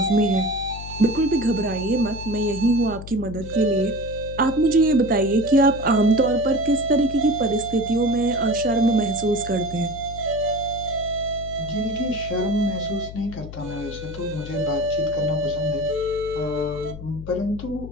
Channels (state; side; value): noise; left; hum, 12 dB below the sound